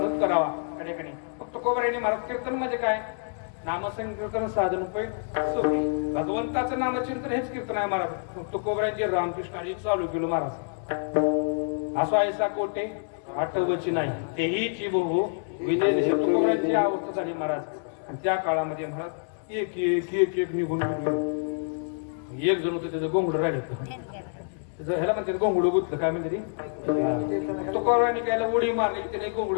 करावा या ठिकाणी. फक्त कोबऱ्याने महाराज कीर्तन म्हणजे काय? नामसंकीर्तन साधन उपाय सोपे. भगवंताचं नामचिंतन हेच कीर्तन आहे महाराज. फक्त कोबऱ्यांचे रामकृष्णाजी चालू केलं महाराज. असो ऐसा कोटे आठवची नाही तेही चिबो विजय देश कोबऱ्यांची अवस्था झाली महाराज. आणि त्या काळामध्ये महाराज एक एक एक एक निघून एक जण होतं त्याचं गोंगड राहिलं. ह्याला म्हणते गोंगड गुतलं काय म्हणते तो कोबऱ्याने कायला उडी मारली, त्याने गोंगड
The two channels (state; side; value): silent; right; digital silence